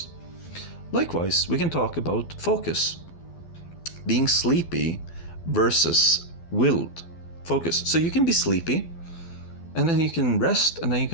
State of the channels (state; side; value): late; right; 12 ms